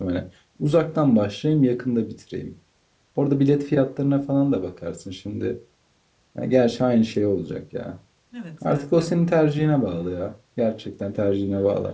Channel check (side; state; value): both; identical; correlation 1.00